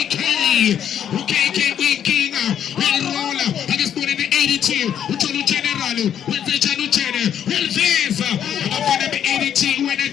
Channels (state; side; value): quieter; right; 9.4 dB